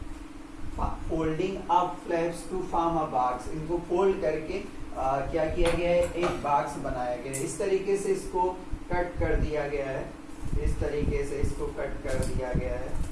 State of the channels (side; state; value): both; identical; correlation 1.00